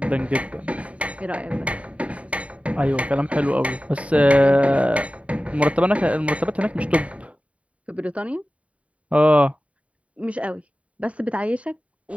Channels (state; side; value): late; left; 0.065 ms